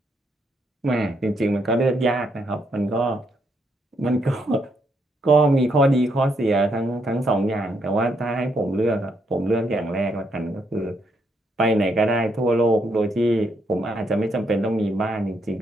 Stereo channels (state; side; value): normal; both; correlation 0.76